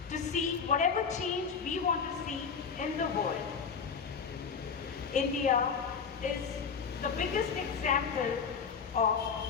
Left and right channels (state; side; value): quieter; right; 6.0 dB